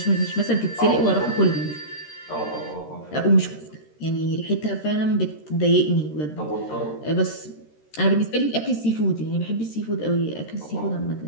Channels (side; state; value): right; late; 13 ms